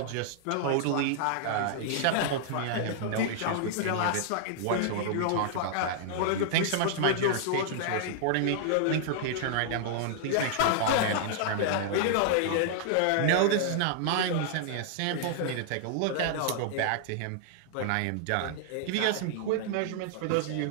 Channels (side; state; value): both; different; correlation -0.01